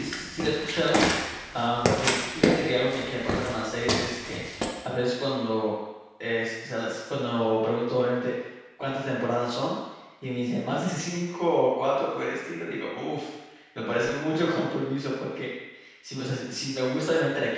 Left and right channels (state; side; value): identical; both; correlation 1.00